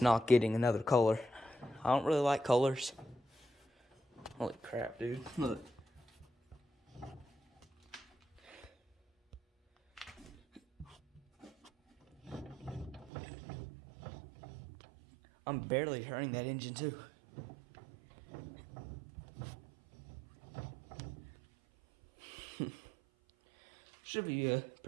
not getting another color. I don't really like colors. Holy crap, dude. Look. I'm barely turning that engine too. Should be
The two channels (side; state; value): left; drops out; at 13.1 s